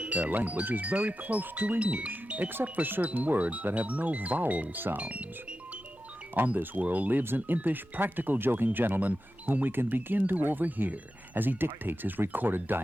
their language is very close to English, except for certain words that have no vowel sounds. On this world lives an impish, practical joking gentleman whom we can begin to overhear as he dictates his recorded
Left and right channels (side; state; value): both; normal; correlation 0.92